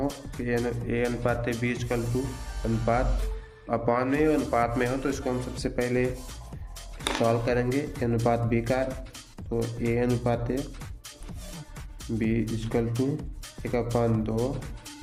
कि ए अनुपात बी इक्वल टू अनुपात अपान में अनुपात में हो तो इसको हम सबसे पहले सॉल्व करेंगे। ए अनुपात बी का तो ए अनुपात बी इक्वल टू 1/2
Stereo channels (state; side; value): identical; both; correlation 1.00